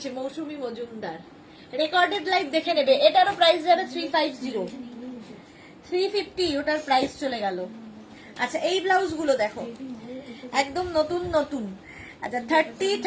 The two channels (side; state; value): both; identical; correlation 1.00